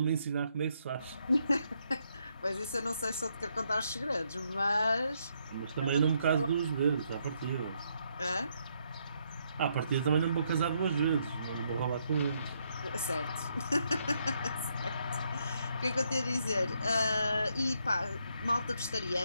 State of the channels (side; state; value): both; inverted; correlation -0.75